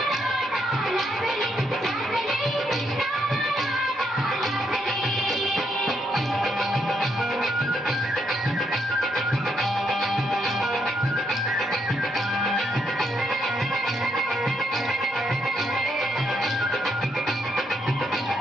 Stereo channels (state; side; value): normal; both; correlation 0.77